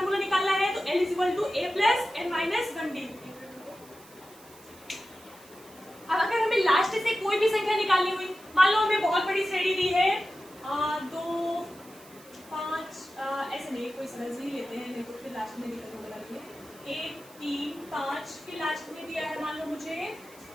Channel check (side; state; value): right; noise; hiss, 23 dB below the sound